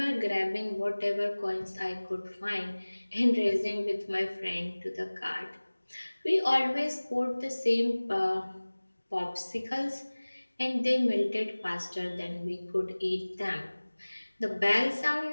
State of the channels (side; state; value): both; inverted; correlation -1.00